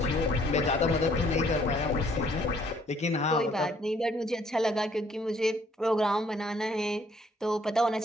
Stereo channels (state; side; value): normal; both; correlation 0.63